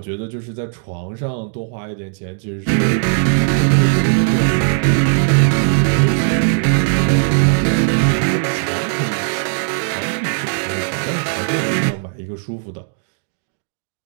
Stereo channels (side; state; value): left; silent; digital silence